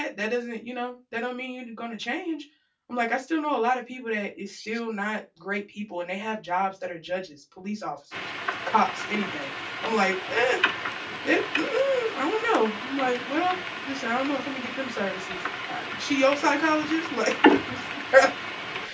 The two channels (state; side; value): identical; both; correlation 1.00